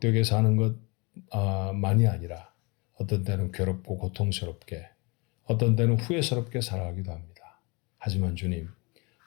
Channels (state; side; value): quieter; right; 28.3 dB